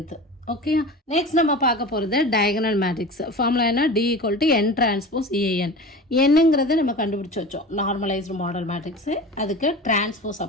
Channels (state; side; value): normal; both; correlation 0.34